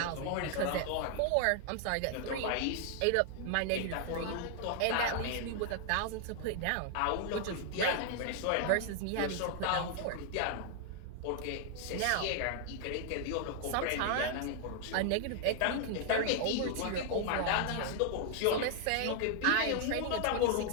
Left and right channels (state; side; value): different; both; correlation 0.00